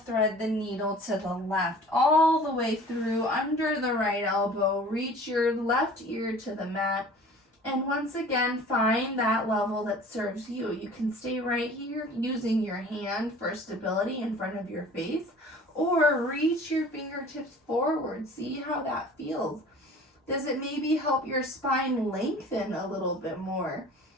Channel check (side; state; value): both; normal; correlation 0.45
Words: the needle to the left, all the way through under the right elbow. Reach your left ear to the mat. And once again, find that level that serves you. You can stay right here using your hand for stability in front of your face, or reach your fingertips forward. See how that feels. Does it maybe help your spine lengthen a little bit more?